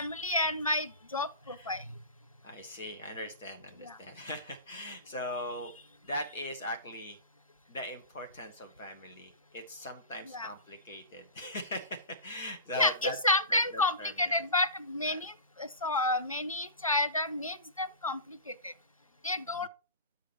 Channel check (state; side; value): inverted; both; correlation -0.32